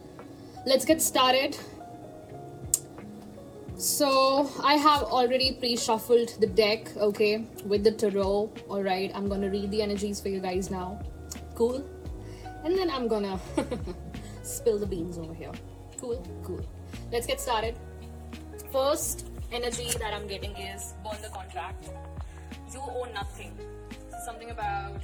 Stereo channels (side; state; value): both; identical; correlation 1.00